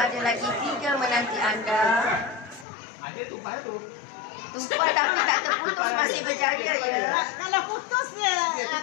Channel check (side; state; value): right; drops out; at 2.7 s